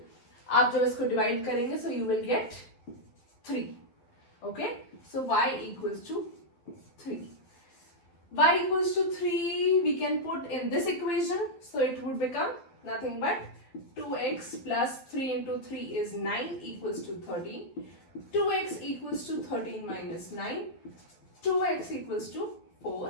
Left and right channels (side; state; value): right; late; 12 ms